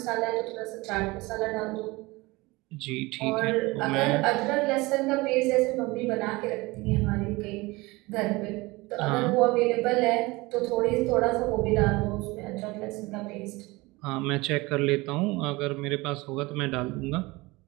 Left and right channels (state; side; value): quieter; left; 22.5 dB